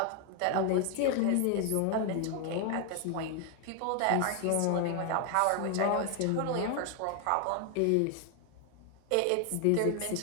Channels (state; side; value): different; both; correlation 0.01